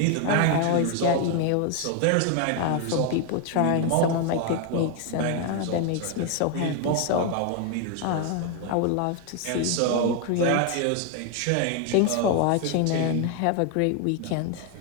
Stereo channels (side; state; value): both; different; correlation 0.01